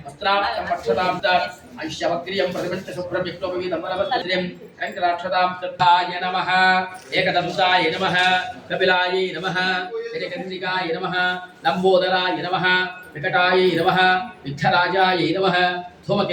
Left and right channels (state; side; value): identical; both; correlation 1.00